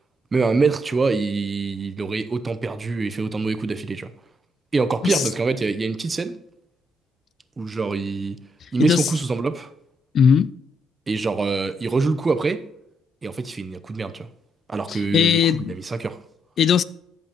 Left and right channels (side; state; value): both; normal; correlation 0.77